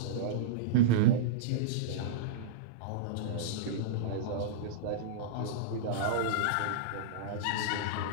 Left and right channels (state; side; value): different; both; correlation -0.04